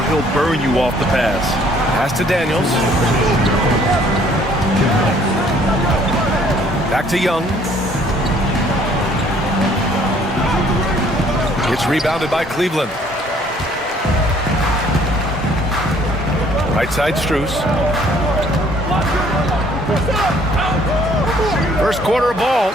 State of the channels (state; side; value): normal; both; correlation 0.60